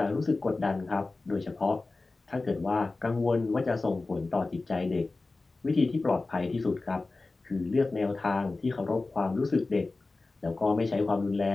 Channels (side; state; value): right; quieter; 3.4 dB